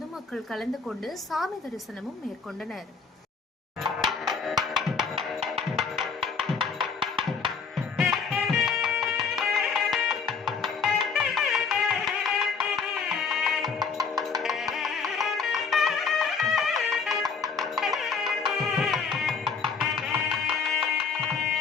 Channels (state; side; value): quieter; right; 5.5 dB